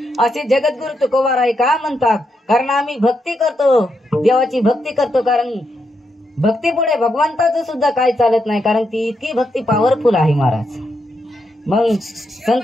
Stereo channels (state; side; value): normal; both; correlation 0.82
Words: असे जगद्गुरु तुकोबाराय का म्हणतात. कारण आम्ही भक्ती करतो, देवाची भक्ती करतो, कारण भक्ती पुढे भगवंताचं सुद्धा काही चालत नाही, कारण ती इतकी भक्ती पॉवरफुल आहे महाराज. मग